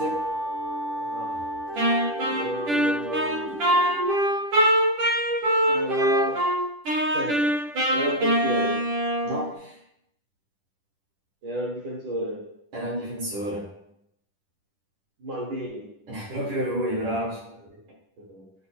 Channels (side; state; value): left; late; 10 ms